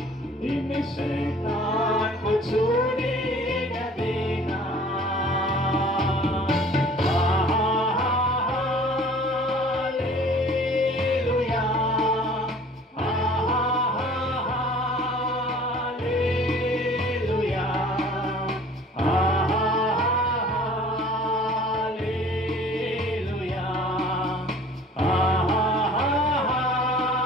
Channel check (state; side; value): normal; both; correlation 0.49